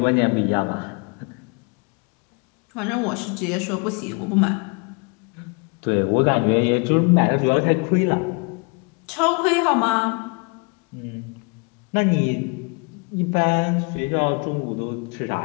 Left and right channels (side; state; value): right; quieter; 32.6 dB